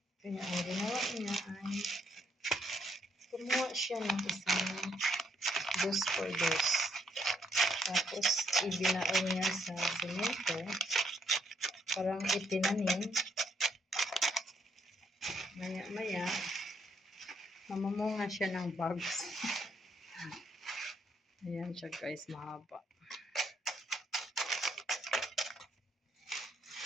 Kaya ang ginawa niya ay kumuha siya ng isang dos por dos. Tapos ibinaon niya sa semento. Parang itinanim. Maya-maya, mamamunga siya ng bags. Ayan siya guys, mahaba.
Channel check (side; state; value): both; normal; correlation 0.73